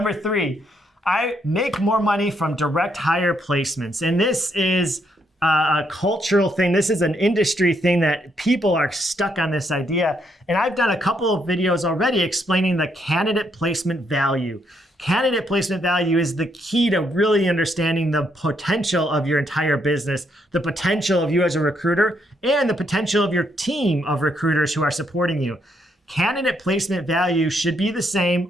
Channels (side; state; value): both; normal; correlation 0.75